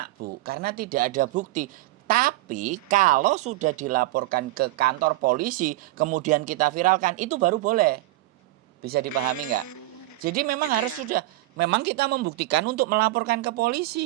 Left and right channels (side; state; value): left; quieter; 18.2 dB